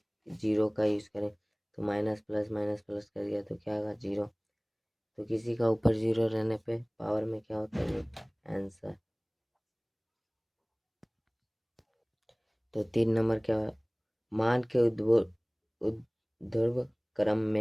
0 का यूज़ करें। तो माइनस प्लस कर दिया तो क्या होगा 0। तो किसी का ऊपर 0 रहने पे पावर में क्या होता है, ये आंसर। तो 3 नंबर क्या है, मान के ऊर्ध्व क्रम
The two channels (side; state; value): both; identical; correlation 1.00